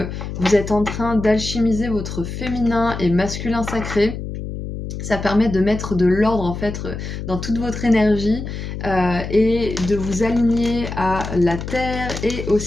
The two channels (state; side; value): noise; left; hum, 7 dB below the sound